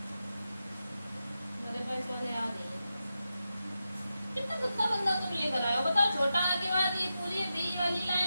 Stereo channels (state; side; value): inverted; both; correlation -0.90